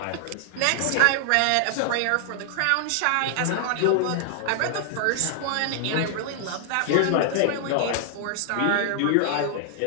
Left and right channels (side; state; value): both; different; correlation 0.00